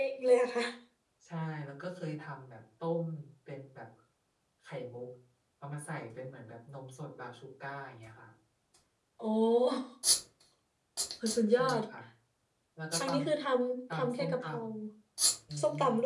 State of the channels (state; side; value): identical; both; correlation 1.00